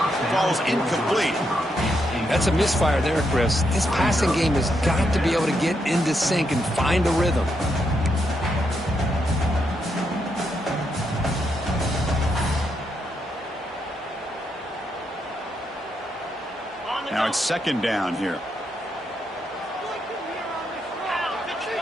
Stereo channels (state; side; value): normal; both; correlation 0.80